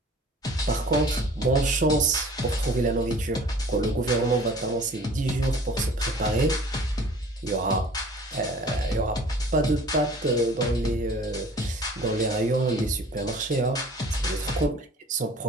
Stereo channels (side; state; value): both; normal; correlation 0.48